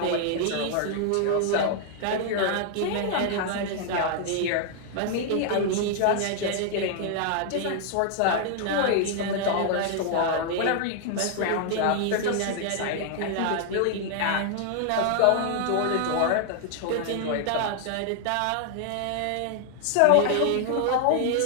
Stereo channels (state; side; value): different; both; correlation 0.00